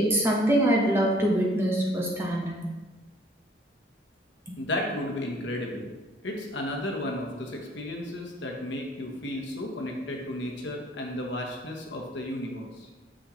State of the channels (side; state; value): both; normal; correlation 0.58